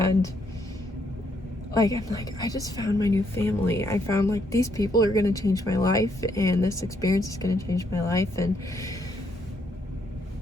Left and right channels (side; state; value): both; normal; correlation 0.73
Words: like, I'm like, I just found my new family. I found like these people are gonna change my life, and this experience is gonna change my life, and